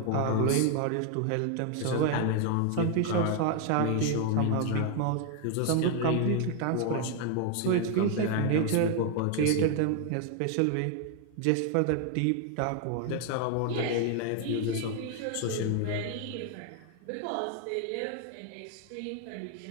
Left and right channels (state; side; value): different; both; correlation 0.01